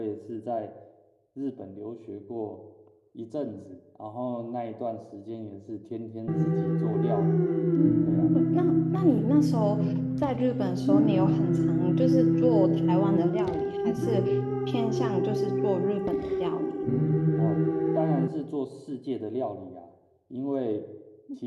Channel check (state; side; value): identical; both; correlation 1.00